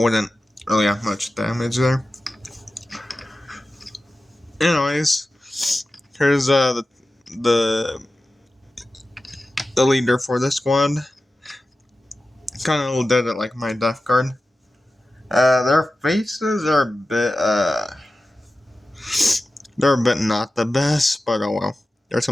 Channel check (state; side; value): normal; both; correlation 0.94